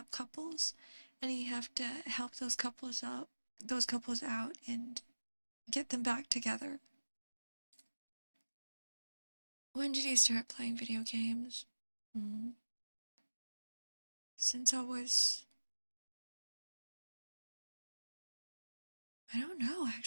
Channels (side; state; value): both; inverted; correlation -1.00